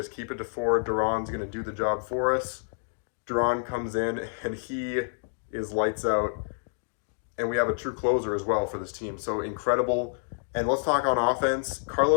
keep it to 4, Duran's going to do the job for us. Duran comes in, and he is lights out. And we have a true closer as well for this team. So incredible. And let's talk on offense.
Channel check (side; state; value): right; silent; digital silence